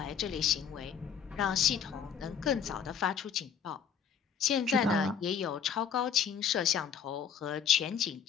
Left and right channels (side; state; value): right; quieter; 7.5 dB